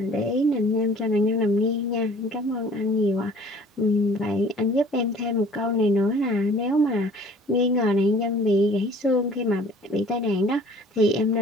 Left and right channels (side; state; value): both; normal; correlation 0.51